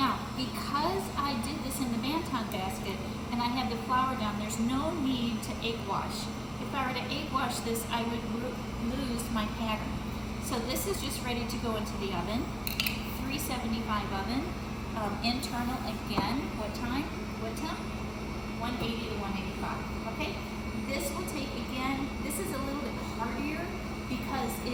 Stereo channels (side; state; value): both; identical; correlation 1.00